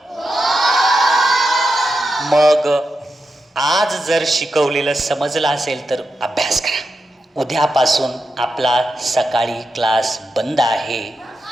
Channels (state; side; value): normal; both; correlation 0.88